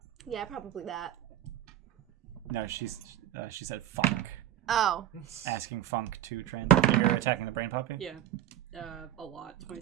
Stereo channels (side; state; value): left; quieter; 12.0 dB